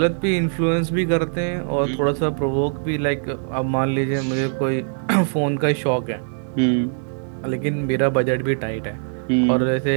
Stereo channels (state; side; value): silent; left; digital silence